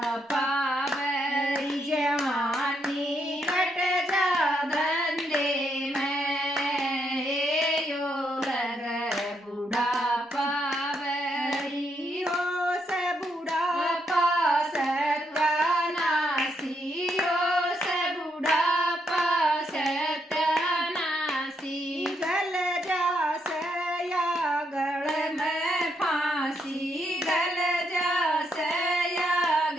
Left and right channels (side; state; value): both; normal; correlation 0.77